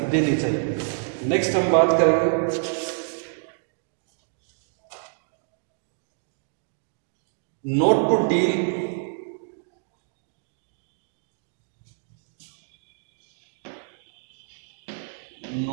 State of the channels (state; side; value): silent; left; digital silence